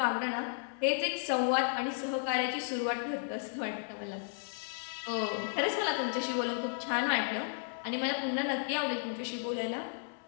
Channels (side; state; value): right; silent; 55 dB below the other